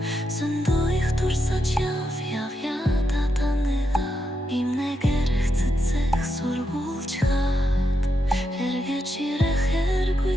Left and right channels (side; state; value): both; normal; correlation 0.84